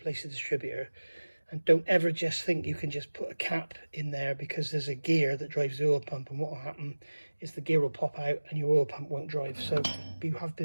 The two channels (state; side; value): inverted; both; correlation -1.00